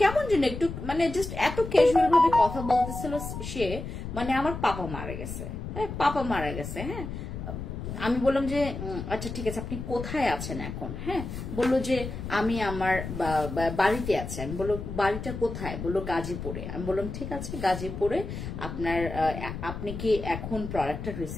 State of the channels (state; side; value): noise; left; rumble, 7 dB below the sound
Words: যেন একটু মানে জাস্ট এত ক্যাজুয়াল ভাবে কথা বলতেছিল সে, মানে আমার পাপা মারা গেছে। হ্যাঁ পাপা মারা গেছে। হ্যাঁ আমি বললাম যে আচ্ছা ঠিক আছে, আপনি কোথায় আছেন এখন? হ্যাঁ, বললো যে আমি আমার বাড়িতে আছি। আমি বললো বাড়িটা কোথায়? বললো গাজীপুরে। আমি বললাম ঠিক আছে, গাজীপুরে আপনি কি এখন প্রোডাক্টটা